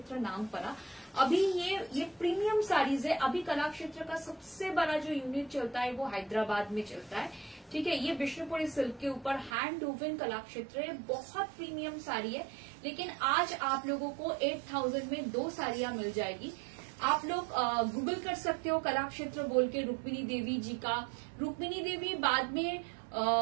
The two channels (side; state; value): left; drops out; at 9.5 s